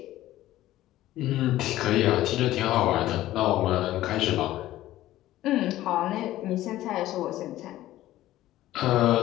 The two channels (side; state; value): right; quieter; 14.9 dB